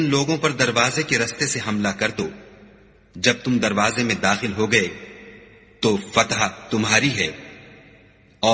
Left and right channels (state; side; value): identical; both; correlation 1.00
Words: لوگوں پر دروازے کے رستے سے حملہ کر دو. جب تم دروازے میں داخل ہو گئے تو فتح تمہاری ہے